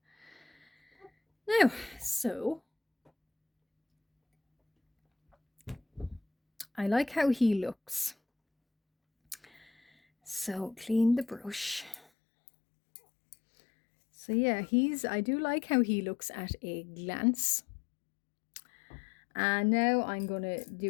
Now, so I like how he looks. So clean the brush. So yeah, I do like how he looks at a glance. And now I'm gonna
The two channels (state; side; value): drops out; right; at 12.0 s